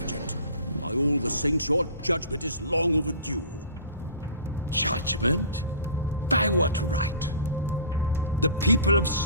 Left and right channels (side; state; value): both; inverted; correlation -0.40